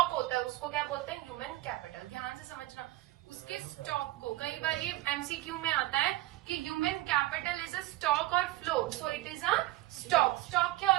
होता है उसको क्या बोलते हैं, ह्यूमन कैपिटल। ध्यान से समझना, उसके स्टॉक को, कई बार ये एमसीक्यू में आता है कि human capital is a stock और flow, so it is a stock. Stock क्या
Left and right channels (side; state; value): left; quieter; 17.4 dB